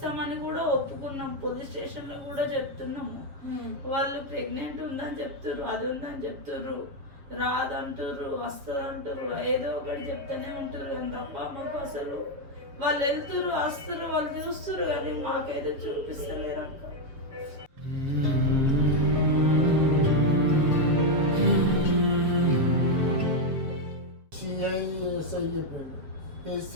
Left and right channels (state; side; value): late; left; 7.3 ms